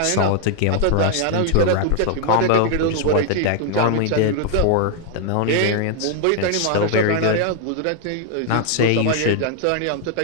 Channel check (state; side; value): different; both; correlation 0.00